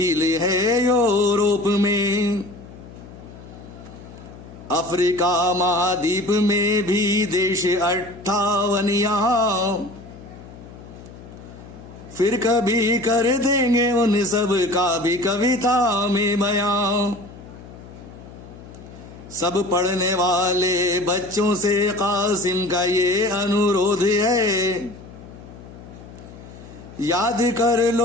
है यूरोप में, अफ्रीका महाद्वीप में भी देश 58 यहाँ, फिर कभी कर देंगे उन सब का भी कविता में बयां, सब पढ़ने वाले बच्चों से कासिम का ये अनुरोध है, याद कर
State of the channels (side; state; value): left; noise; hum, 17 dB below the sound